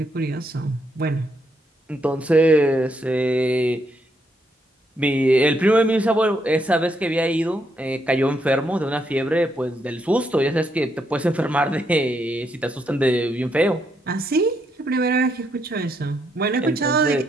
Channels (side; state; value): both; normal; correlation 0.77